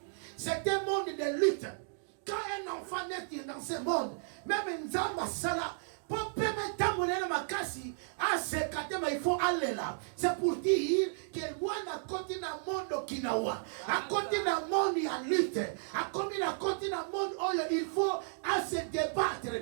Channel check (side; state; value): left; silent; digital silence